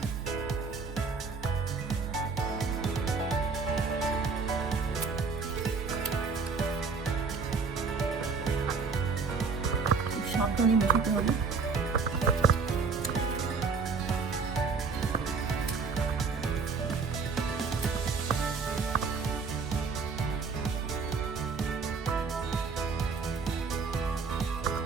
সাবধানে মেশাতে হবে।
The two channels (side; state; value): left; quieter; 5.0 dB